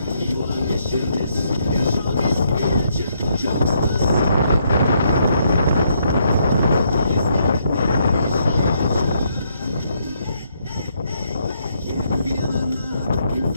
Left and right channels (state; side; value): inverted; both; correlation -0.73